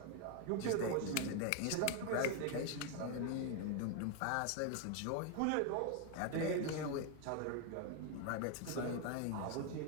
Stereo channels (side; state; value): both; different; correlation 0.01